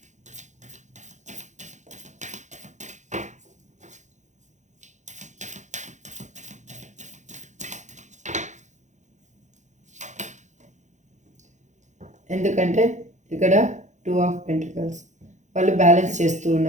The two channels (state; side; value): late; left; 0.35 ms